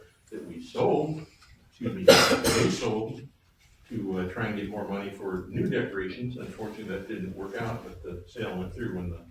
that we sold, they sold to try and get more money for new decorations. Unfortunately, that didn't work out, but the sale went through when the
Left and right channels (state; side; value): identical; both; correlation 1.00